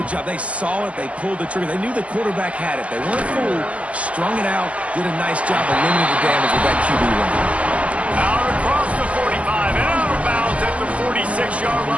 job. They saw it. They pulled the trigger. They knew the quarterback had it. They weren't fooled. Strung it out. Did a nice job of limiting the damage with that QB run. Out across the 45 and out of bounds at the 46-yard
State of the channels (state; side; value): late; left; 0.063 ms